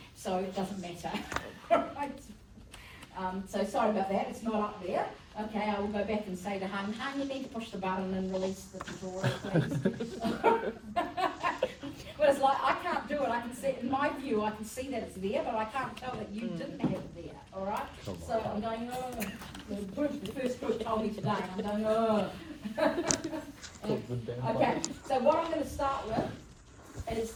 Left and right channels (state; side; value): identical; both; correlation 1.00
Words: so it doesn't matter. Right. So sorry about that. It's not up there. Okay, I will go back and say to Hung, you need to push the button and release the tutorial, please. But it's like, I can't do it. I can see, in my view, I can see that it's there, but I can't tell that you didn't have it there, all right? So I'm going, the first group told me today, and I'm going, Okay, so what I'm going to start with is